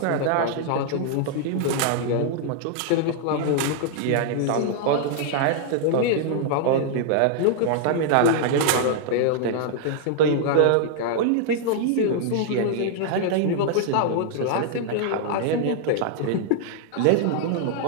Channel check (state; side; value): different; both; correlation -0.01